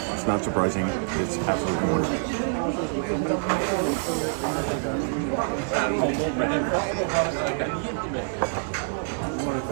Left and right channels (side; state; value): left; silent; digital silence